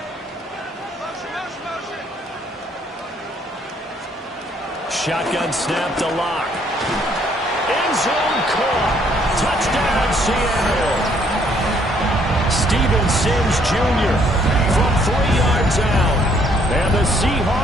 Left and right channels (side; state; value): both; normal; correlation 0.66